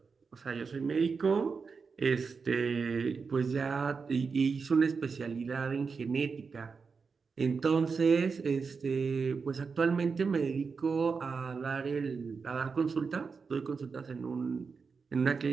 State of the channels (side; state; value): left; quieter; 5.1 dB